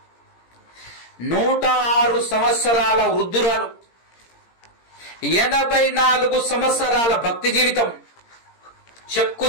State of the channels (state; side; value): late; right; 17 ms